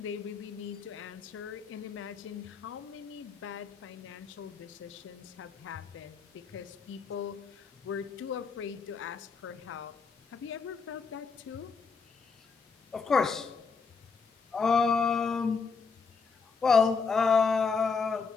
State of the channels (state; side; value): quieter; right; 5.2 dB